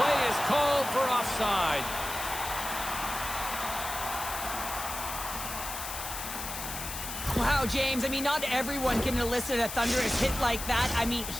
is called for offside. Wow, James, I mean, not everyone can elicit a thunderous hit like that. I mean,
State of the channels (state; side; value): noise; left; hiss, 7 dB below the sound